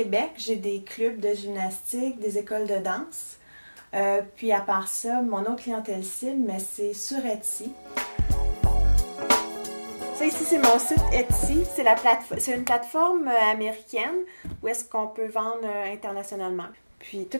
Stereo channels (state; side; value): inverted; both; correlation -1.00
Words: j'ai des clubs de gymnastique, des écoles de danse. Puis à part ça, mon autre clientèle cible, mais c'est sur Etsy. Ça ici, c'est mon site Etsy. C'est une plateforme américaine où est-ce qu'on peut vendre internationalement. Puis